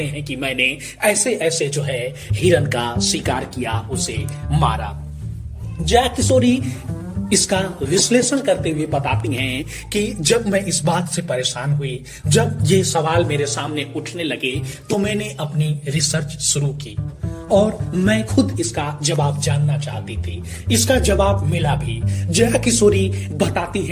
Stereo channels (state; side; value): identical; both; correlation 1.00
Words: हैं कि मैंने ऐसे ऐसे जो है हिरण का शिकार किया, उसे मारा। जया किशोरी इसका विश्लेषण करते हुए बताती हैं कि जब मैं इस बात से परेशान हुई, जब ये सवाल मेरे सामने उठने लगे तो मैंने अपनी रिसर्च शुरू की और मैं खुद इसका जवाब जानना चाहती थी। इसका जवाब मिला भी। जया किशोरी बताती